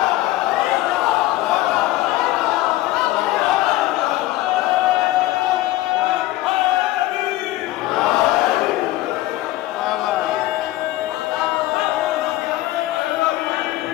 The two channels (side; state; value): right; quieter; 16.6 dB